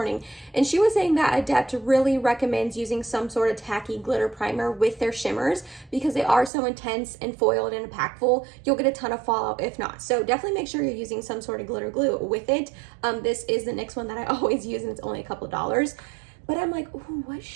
and she was saying that Adept really recommends using some sort of tacky glitter primer with their shimmers because they are so intense and foiled and impactful. You'll get a ton of fallout if not. So definitely make sure you're using some sort of glitter glue with it. This is the NYX one that I always use, and it's only a couple of dollars. But I'm like, ooh, what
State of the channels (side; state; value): left; drops out; at 6.5 s